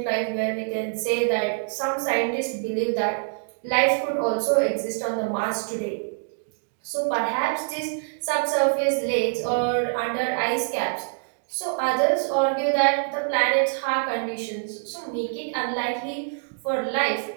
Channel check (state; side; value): silent; left; digital silence